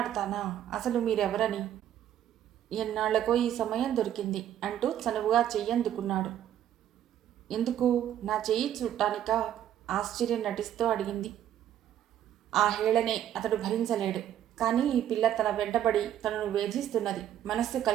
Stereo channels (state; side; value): quieter; left; 11.1 dB